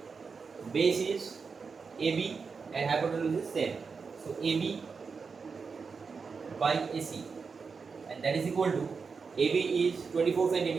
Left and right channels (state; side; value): quieter; left; 5.2 dB